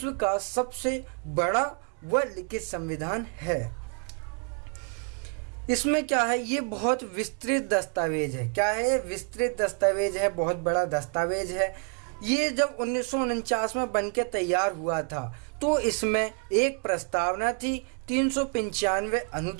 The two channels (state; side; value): quieter; left; 39.4 dB